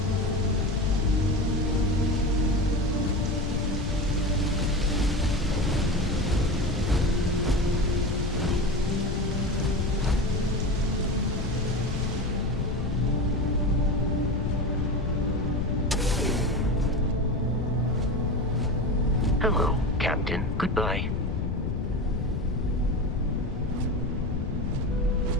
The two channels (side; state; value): left; noise; rumble, 1 dB below the sound